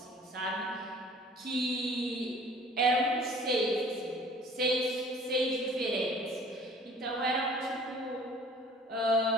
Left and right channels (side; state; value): both; normal; correlation 0.50